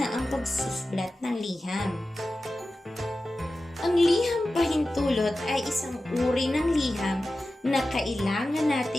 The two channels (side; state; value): both; normal; correlation 0.94